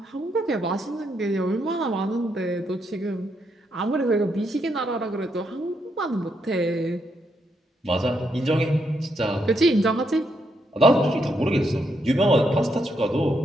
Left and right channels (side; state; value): both; normal; correlation 0.78